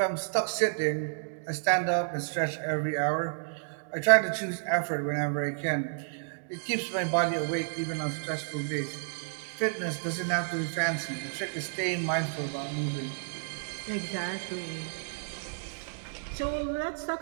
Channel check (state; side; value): silent; left; digital silence